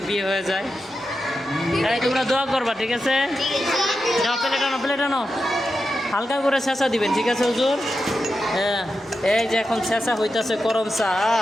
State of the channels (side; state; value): both; normal; correlation 0.89